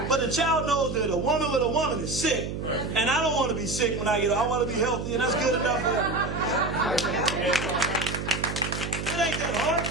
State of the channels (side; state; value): right; noise; hum, 5 dB below the sound